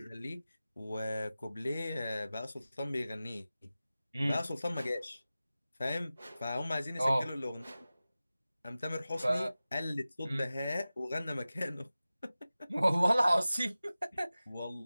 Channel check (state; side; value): inverted; both; correlation -0.96